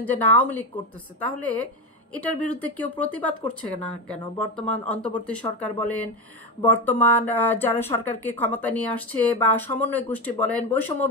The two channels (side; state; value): both; normal; correlation 0.16